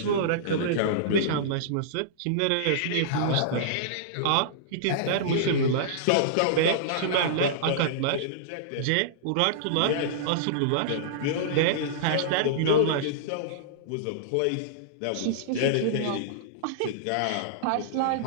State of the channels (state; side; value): different; both; correlation -0.02